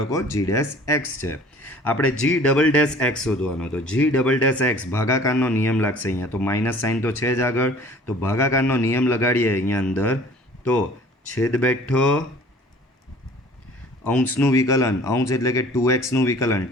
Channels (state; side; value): normal; both; correlation 0.50